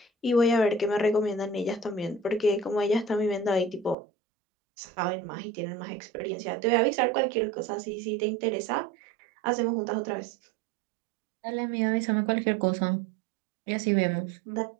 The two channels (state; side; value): drops out; left; at 4.0 s